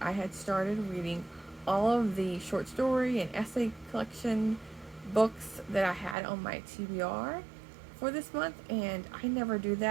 I had started reading all of the short story and essay collection books that I had on my TBR for this month, and I never do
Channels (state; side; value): drops out; left; at 6.2 s